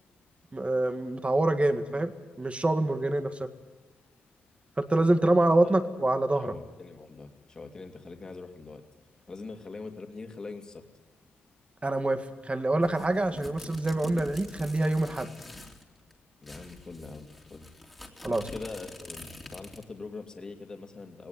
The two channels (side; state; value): both; normal; correlation 0.96